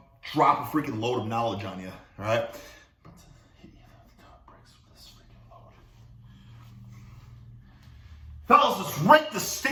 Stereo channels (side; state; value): both; identical; correlation 1.00